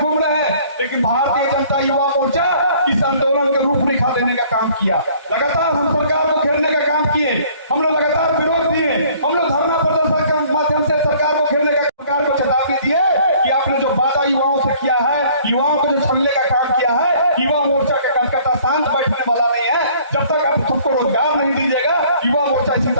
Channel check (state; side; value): inverted; both; correlation -0.55